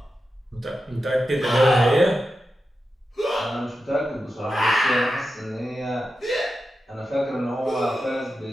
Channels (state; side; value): normal; both; correlation 0.90